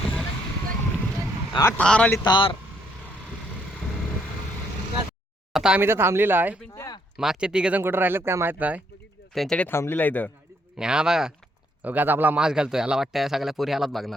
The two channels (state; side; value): normal; both; correlation 0.71